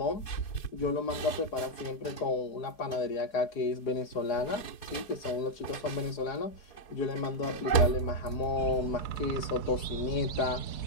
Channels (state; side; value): late; right; 4.6 ms